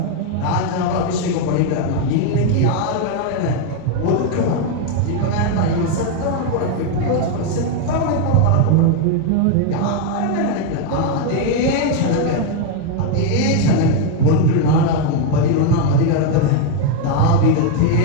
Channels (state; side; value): different; both; correlation 0.01